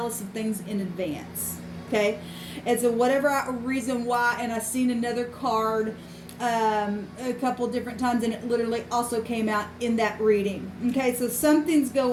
us some things in advance. Okay, and so whatever reason why, and I've seen another card a couple different times, and it literally also came out in that reading. Okay, so something's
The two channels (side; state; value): both; identical; correlation 1.00